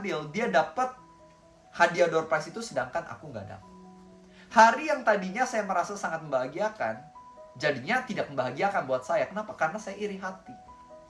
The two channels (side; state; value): both; identical; correlation 1.00